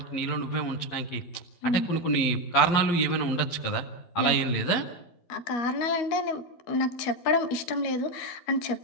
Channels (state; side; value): late; right; 11 ms